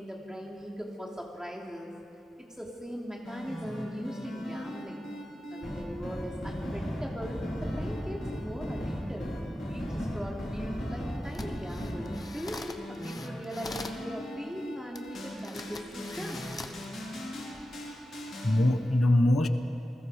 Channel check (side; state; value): both; normal; correlation 0.93